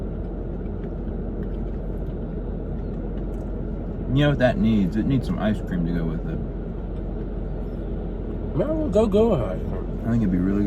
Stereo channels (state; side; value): identical; both; correlation 1.00